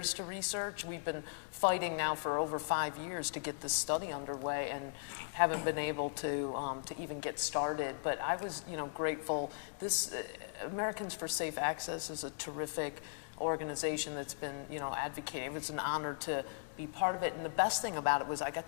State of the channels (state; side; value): silent; right; digital silence